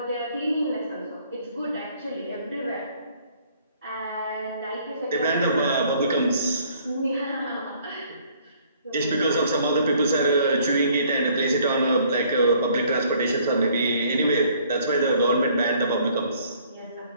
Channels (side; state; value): both; inverted; correlation -0.61